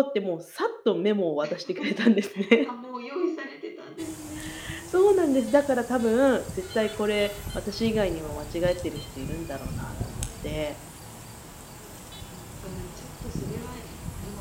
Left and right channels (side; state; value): both; identical; correlation 1.00